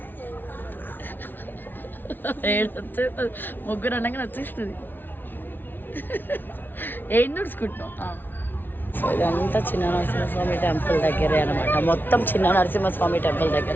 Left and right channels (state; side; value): late; right; 0.094 ms